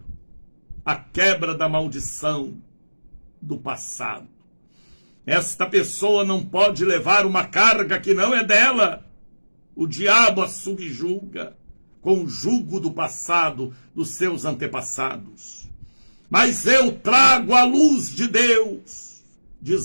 a quebra da maldição do passado. Esta pessoa não pode levar uma carga que não é dela. O diabo a subjuga com o jugo do passado dos seus antepassados. Mas eu trago a luz de Deus,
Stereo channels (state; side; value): inverted; both; correlation -1.00